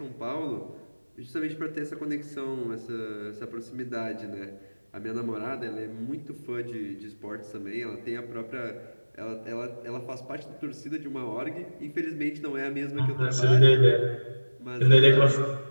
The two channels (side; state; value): both; inverted; correlation -1.00